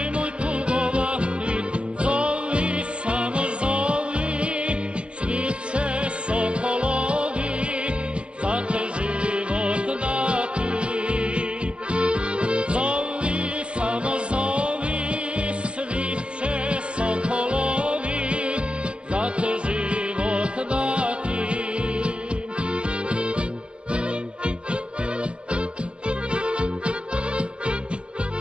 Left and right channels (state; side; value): late; left; 0.058 ms